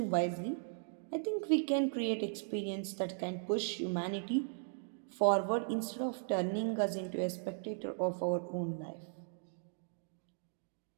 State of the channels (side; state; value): left; silent; digital silence